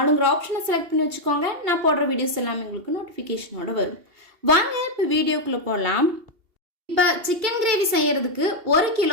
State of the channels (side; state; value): left; late; 2.8 ms